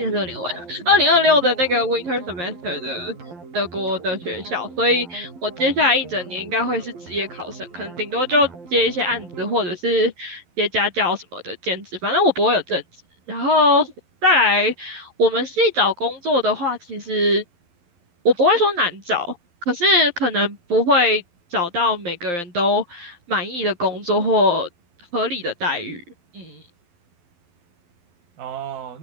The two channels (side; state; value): left; late; 12 ms